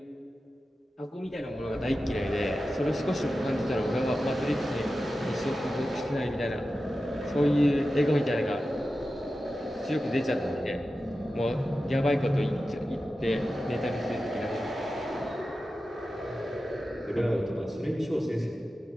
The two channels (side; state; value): both; normal; correlation 0.93